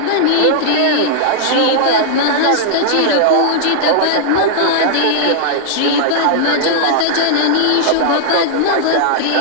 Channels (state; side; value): different; both; correlation -0.01